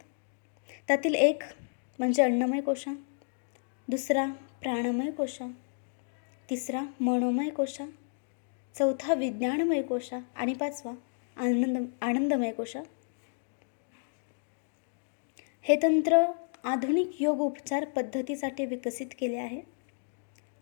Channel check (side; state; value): right; silent; digital silence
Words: त्यातील एक म्हणजे अन्नमय कोशा, दुसरा प्राणमय कोशा, तिसरा मनोमय कोशा, चौथा विज्ञानमय कोशा आणि पाचवा आनंदमय कोशा. हे तंत्र आधुनिक योग उपचार पद्धतीसाठी विकसित केले आहे.